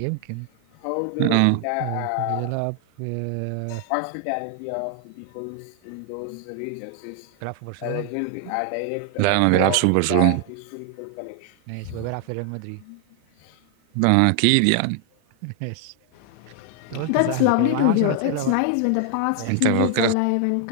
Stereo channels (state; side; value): different; both; correlation 0.00